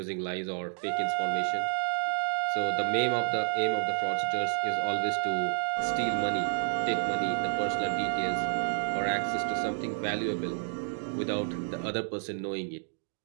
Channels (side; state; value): left; silent; 58 dB below the other